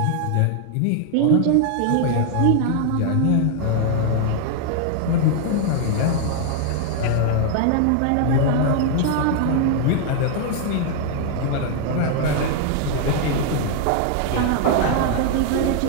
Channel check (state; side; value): different; both; correlation 0.00